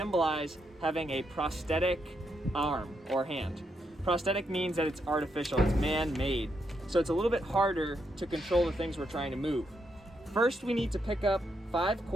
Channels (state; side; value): normal; both; correlation 0.80